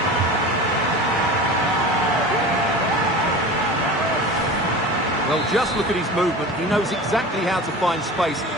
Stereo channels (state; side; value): normal; both; correlation 0.34